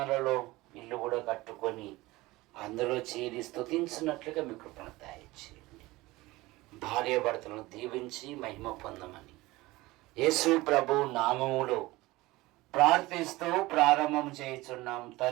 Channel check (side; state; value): left; quieter; 19.9 dB